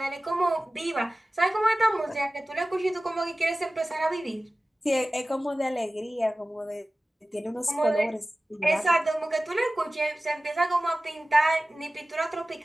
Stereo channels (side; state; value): both; normal; correlation 0.97